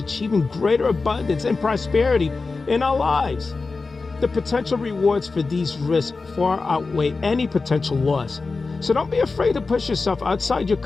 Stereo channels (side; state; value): right; quieter; 4.0 dB